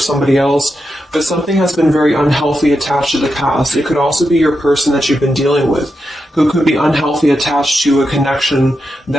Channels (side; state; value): both; normal; correlation 0.87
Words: else, but something has been very unhealthy attached to the past. It could also be your person that you've been dealing with, who could be unhealthy attached to a connection